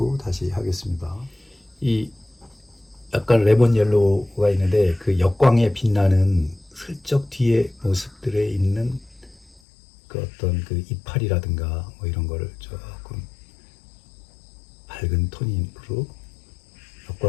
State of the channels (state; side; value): drops out; right; at 9.6 s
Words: 다시 하겠습니다. 이 약간 레몬 옐로우가 있는데 그 역광에 빛나는 슬쩍 뒤에 모습들에 있는 어떤 이파리라든가 뭐 이런 거를 조금 밝은 톤으로